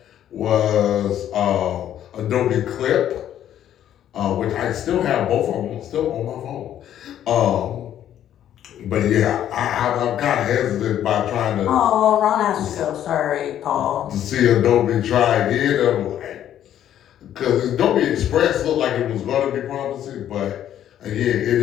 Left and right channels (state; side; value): quieter; right; 10.9 dB